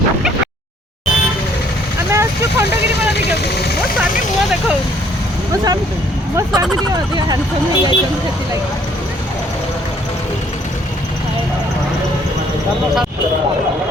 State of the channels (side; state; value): both; normal; correlation 0.63